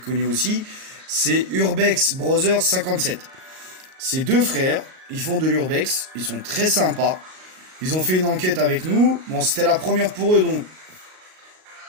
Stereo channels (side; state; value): left; late; 38 ms